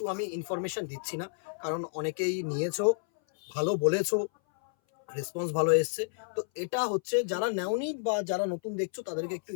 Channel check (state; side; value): silent; right; 57 dB below the other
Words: আমি ইনফরমেশন দিচ্ছি না, কারণ অনেকেই নিয়েছো, ভালো বলেছো, রেসপন্স ভালো এসছে। তো এটা হচ্ছে যারা নেওনি বা যারা নতুন দেখছো তাদেরকে একটু